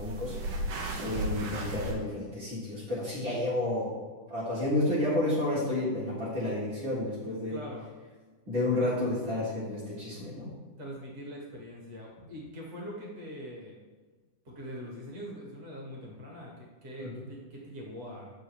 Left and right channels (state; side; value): late; left; 10 ms